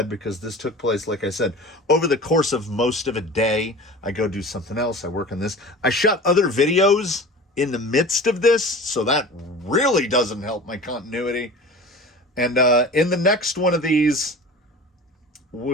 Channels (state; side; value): normal; both; correlation 0.38